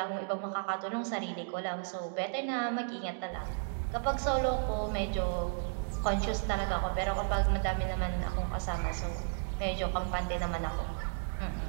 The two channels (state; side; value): silent; left; digital silence